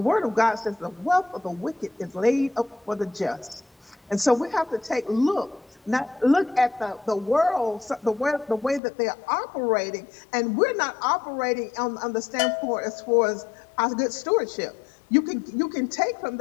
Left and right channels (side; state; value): right; drops out; at 8.8 s